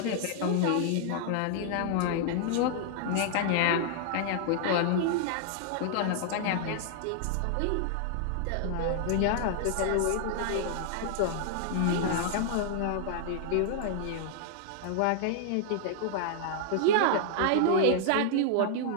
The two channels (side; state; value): both; different; correlation -0.01